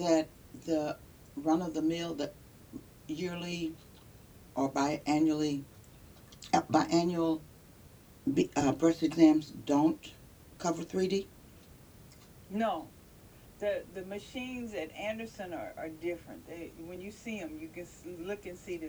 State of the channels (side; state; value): both; identical; correlation 1.00